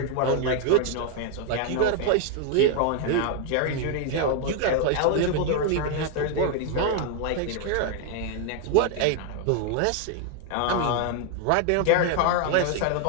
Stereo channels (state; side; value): different; both; correlation 0.00